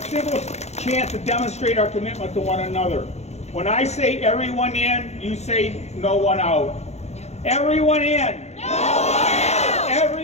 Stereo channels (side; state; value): right; late; 0.32 ms